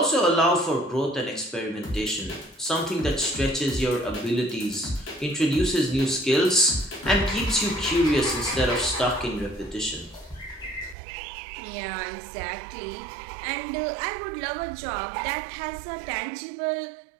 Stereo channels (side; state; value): left; drops out; at 11.0 s